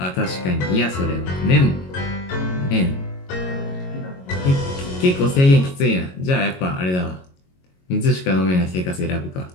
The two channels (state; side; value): late; right; 22 ms